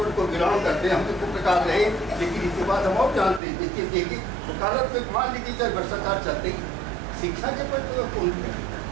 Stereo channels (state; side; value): drops out; left; at 3.4 s